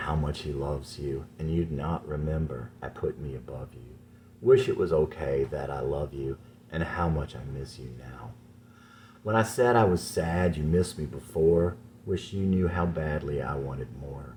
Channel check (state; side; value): identical; both; correlation 1.00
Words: much he loves you, and you'd not remember I put me above you. Wish it was okay that I love you, and how much I miss you now. When I said I was sad you missed me before, wish you knew how badly I wanted more,